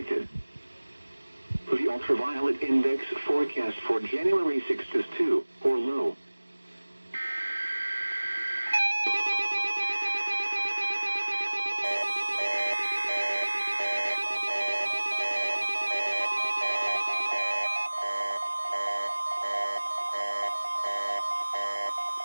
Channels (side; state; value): both; inverted; correlation -1.00